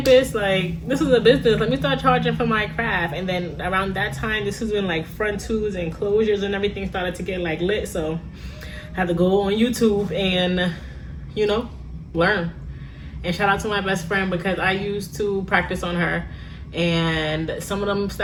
Like, this is a business. Let me start charging for my craft. And then around that time, this is when like front twos and closures and everything started to get like lit. So I had to go on YouTube and, you know, learn. And shout out to my best friend, because I used to practice on her. And some of them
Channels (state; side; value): identical; both; correlation 1.00